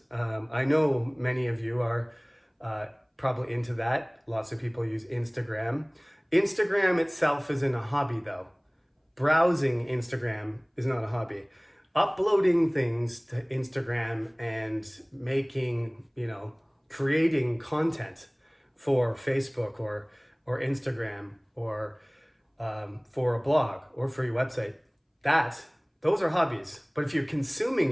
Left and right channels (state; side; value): identical; both; correlation 1.00